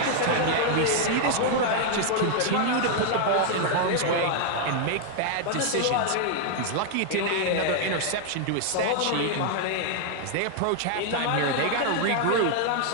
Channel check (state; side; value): different; both; correlation 0.00